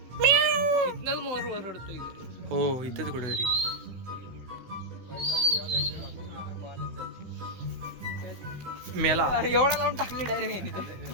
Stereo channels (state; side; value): late; left; 16 ms